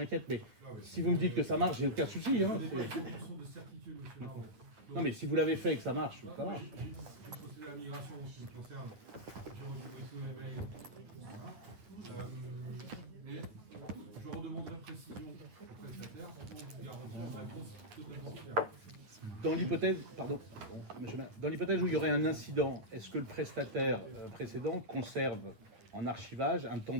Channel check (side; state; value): left; late; 9.2 ms